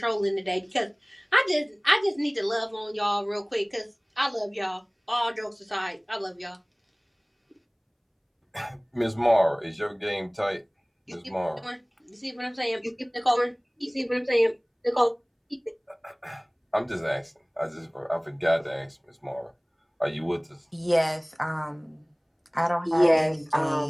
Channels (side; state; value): both; identical; correlation 1.00